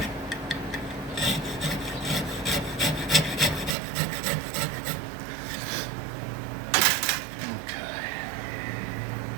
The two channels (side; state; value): left; drops out; at 3.8 s